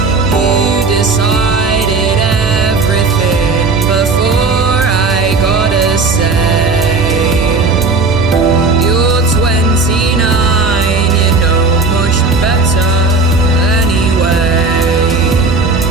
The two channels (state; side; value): quieter; left; 3.9 dB